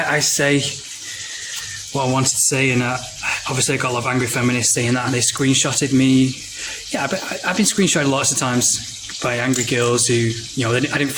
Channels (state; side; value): identical; both; correlation 1.00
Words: say what I wanted to say, and obviously I got a lot of angry feminists saying that, and they screenshotted me. Yeah, but I've been screenshotted lots of times by angry girls who, I didn't